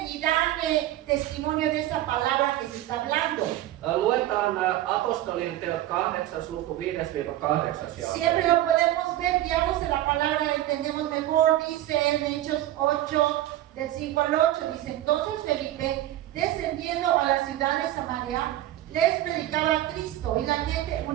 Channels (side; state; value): left; quieter; 14.2 dB